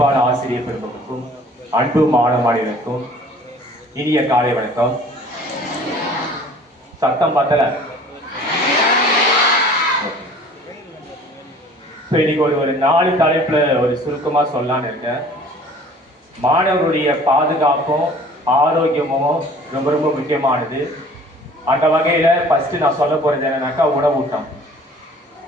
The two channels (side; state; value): both; normal; correlation 0.50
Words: ஆசிரியர் பெருமக்களுக்கும் அன்பு மாணவர்களுக்கும் இனிய காலை வணக்கம். சத்தம் பத்தல. இன்னைக்கு ஒரு 4 தலைப்புல ஒரு சுருக்கமா சொல்லலான்னு இருக்கேன். மாணவருடைய பாதுகாப்பும் ஆரோக்கியமும் ரொம்ப ரொம்ப முக்கியமானது. அந்த வகையில ஃபர்ஸ்ட் நான் சொல்ல போறது என்னன்னாக்கா உணவூட்டம்.